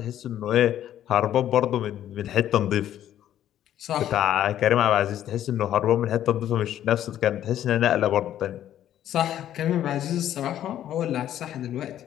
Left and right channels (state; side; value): quieter; right; 11.5 dB